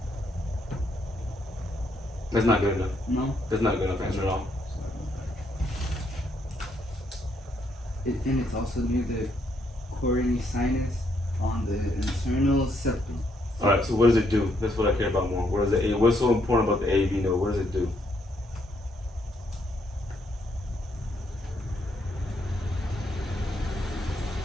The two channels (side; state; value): both; normal; correlation 0.74